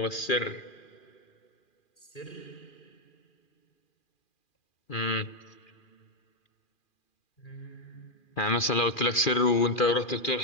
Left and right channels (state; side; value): late; right; 2.4 ms